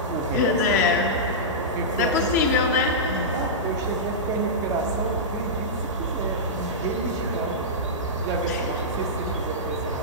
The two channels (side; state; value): both; normal; correlation -0.13